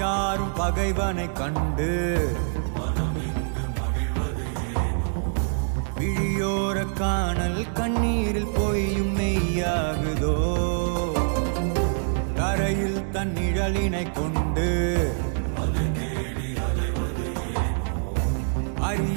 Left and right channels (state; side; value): silent; left; 59 dB below the other